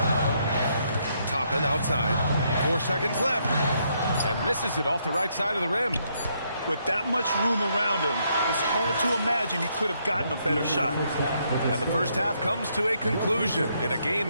Toppin outside. 4 seconds left. And misses it off the right side of the rim. With that much room around him, it's hard to imagine he could have gotten a better shot. And the first half comes to a conclusion in a game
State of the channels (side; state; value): both; inverted; correlation -0.74